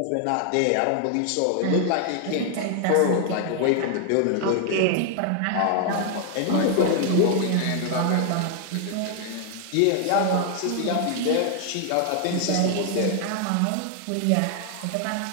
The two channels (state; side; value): different; both; correlation 0.00